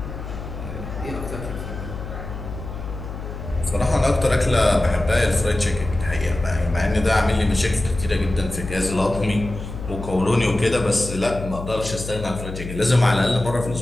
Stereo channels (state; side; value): noise; left; hum, 9 dB below the sound